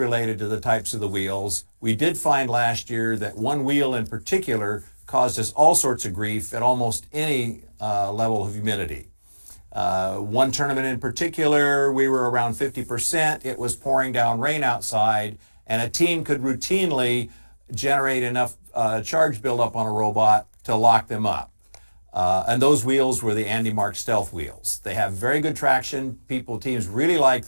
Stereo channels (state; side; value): inverted; both; correlation -1.00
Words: to the types of the wheels, we did find last year that one wheel in particular caused us all sorts of grief at almost any level of humidity. One tournament in particular, we were around 50%. It was pouring down rain outside, and a team could routinely generate enough charge buildup on a robot to lock them up. And those wheels were the Andy Mark Stealth wheels. They have very good traction. Teams really like